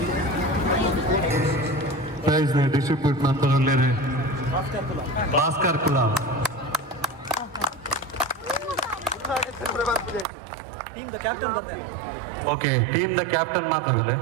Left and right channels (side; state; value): left; drops out; at 10.2 s